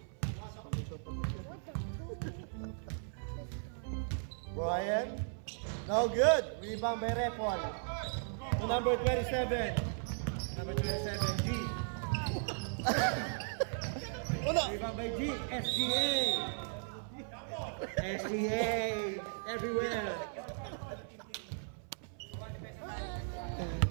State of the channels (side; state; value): left; silent; 53 dB below the other